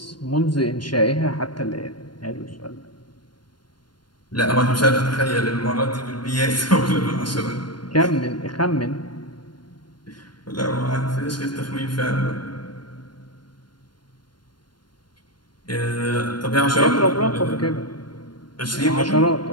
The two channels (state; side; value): late; right; 0.71 ms